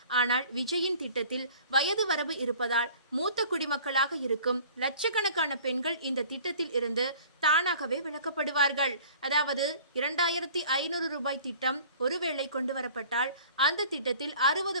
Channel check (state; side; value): inverted; both; correlation -0.48